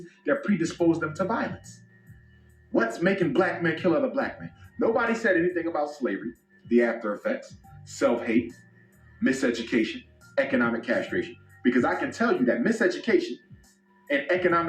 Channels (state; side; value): identical; both; correlation 1.00